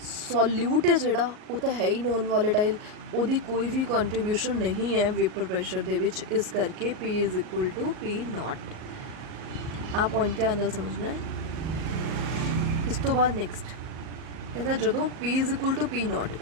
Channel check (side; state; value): left; late; 38 ms